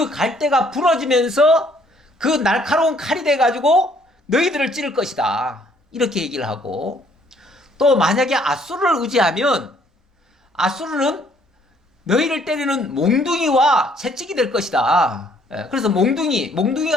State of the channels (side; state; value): both; normal; correlation 0.63